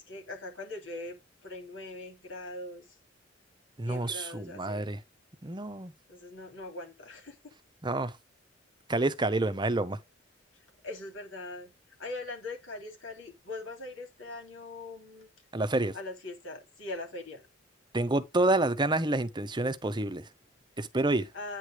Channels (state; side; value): normal; both; correlation 0.52